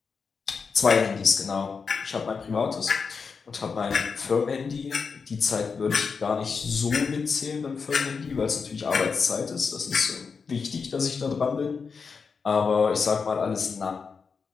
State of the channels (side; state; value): right; quieter; 5.4 dB